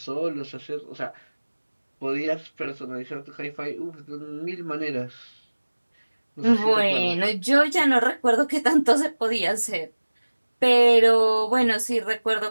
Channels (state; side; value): inverted; both; correlation -1.00